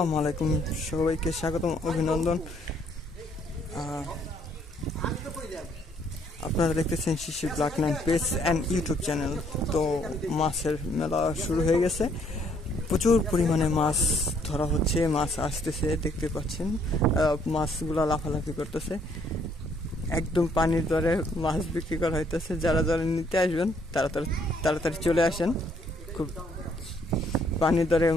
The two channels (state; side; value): normal; both; correlation 0.67